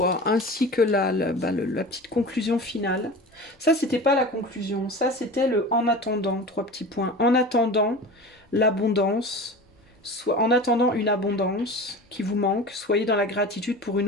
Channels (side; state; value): both; normal; correlation 0.34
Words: Ainsi que la petite conclusion finale. Ça, c'était pas la conclusion. Ça, c'était le en attendant. 3 petits points. En attendant l'abondance, en attendant une abondance qui vous manque, soyez dans la gratitude pour